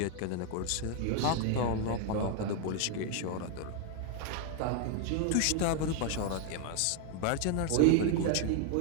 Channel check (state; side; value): different; both; correlation 0.00